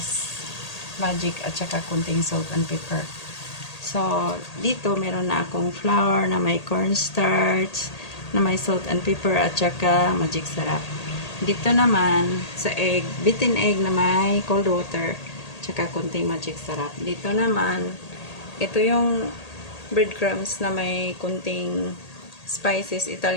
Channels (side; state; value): right; late; 1.8 ms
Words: magic, at saka kunting salt and pepper. So, dito meron na akong flour na may cornstarch, na may salt and pepper, at saka magic sarap. Dito naman, sa egg, beaten egg na may cold water, tsaka kunting magic sarap. Dito naman, ito yung breadcrumbs na may kunting spices,